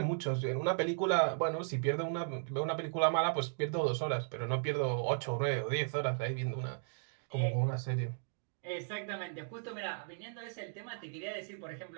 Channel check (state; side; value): silent; left; digital silence